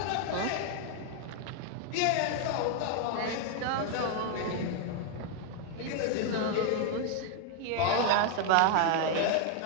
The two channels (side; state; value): both; different; correlation 0.00